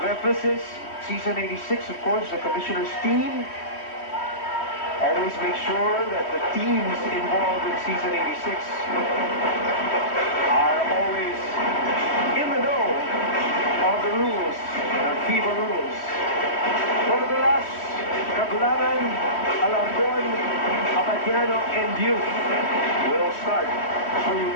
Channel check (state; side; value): late; right; 3.1 ms